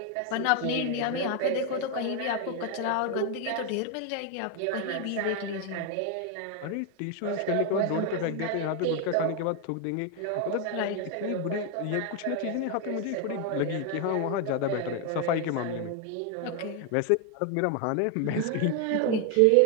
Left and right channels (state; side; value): different; both; correlation 0.01